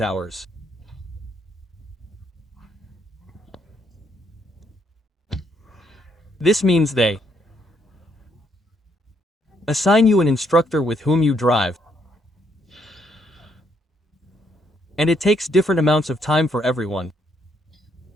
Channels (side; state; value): both; normal; correlation 0.72